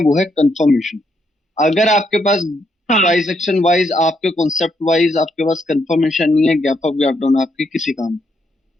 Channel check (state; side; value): normal; both; correlation 0.76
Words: है कंफर्मेशन। अगर आपके पास हाँ। प्राइस एक्शन वाइज, आपके कॉन्सेप्ट वाइज आपके पास कंफर्मेशन नहीं है, गैप अप गैप डाउन आपके किसी काम में।